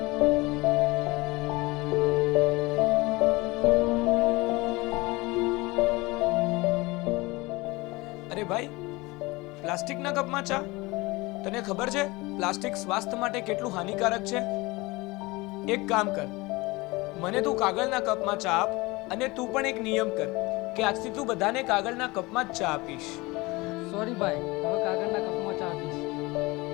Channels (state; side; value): quieter; right; 22.9 dB